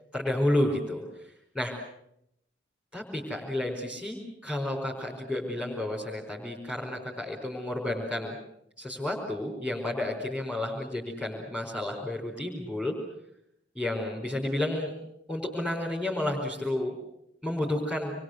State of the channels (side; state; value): both; normal; correlation 0.82